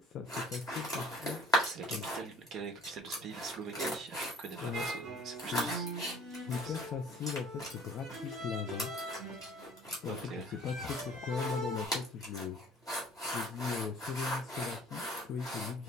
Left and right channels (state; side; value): normal; both; correlation 0.51